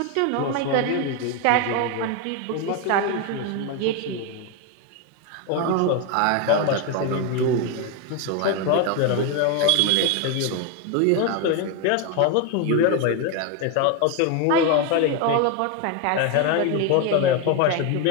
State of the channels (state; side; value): different; both; correlation 0.02